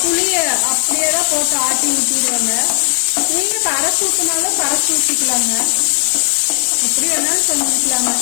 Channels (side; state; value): right; silent; 69 dB below the other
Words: புளியை அப்படியே தான் போட்டு ஆட்டி ஊற்றிடுவேங்க. நீங்கள் கரைச்சி ஊற்றினாலும் கரைச்சி ஊற்றிக்கலாங்க. எப்படி வேணாலும் செஞ்சுக்கலாங்க.